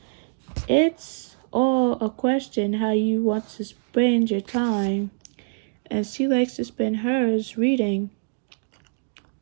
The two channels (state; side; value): silent; left; digital silence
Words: it's all a question how you want to spend your time, and she likes to spend hers reading.